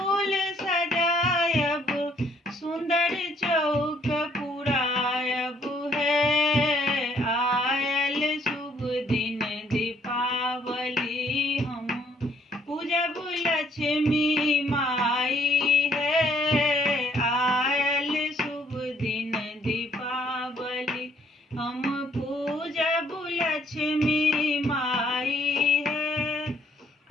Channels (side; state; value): both; normal; correlation 0.66